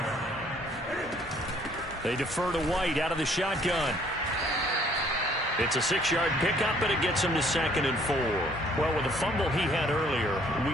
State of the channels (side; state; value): both; normal; correlation 0.61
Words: They defer to White out of the shotgun. It's a 6-yard pickup, and it gets him to 2nd and 4. Well, with the fumble he had earlier,